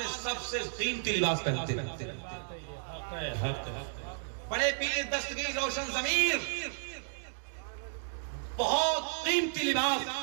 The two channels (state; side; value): silent; left; digital silence